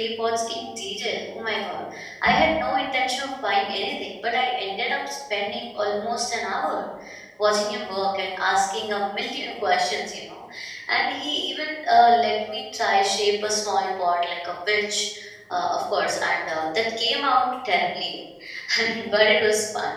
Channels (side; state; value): both; identical; correlation 1.00